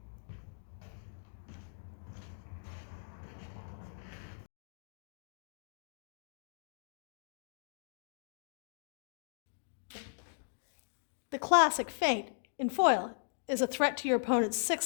The classic feint in foil is a threat to your opponent's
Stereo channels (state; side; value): silent; right; digital silence